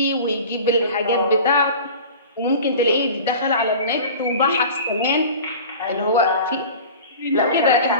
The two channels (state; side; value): inverted; both; correlation -0.38